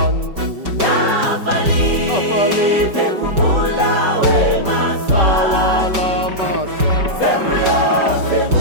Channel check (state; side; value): late; left; 5.2 ms